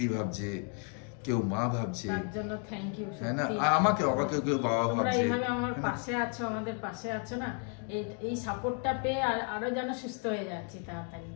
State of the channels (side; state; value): right; quieter; 38.4 dB